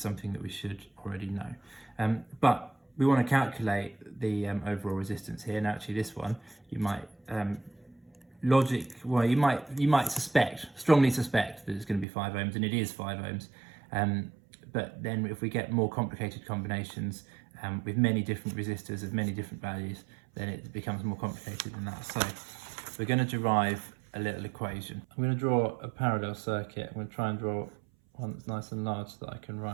that we should already know. But we want to calculate the overall resistance here. Now, actually, this one you might you might strongly suspect that it's going to be 5 ohms, and it is 5 ohms. But then, if we get more complicated combinations with many different resistors of many different values, then it becomes more complicated than that. So we're going to derive a little equation. I'm going to draw a parallel circuit. I'm going to try and draw one that's nice and large so that I can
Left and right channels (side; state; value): left; drops out; at 12.1 s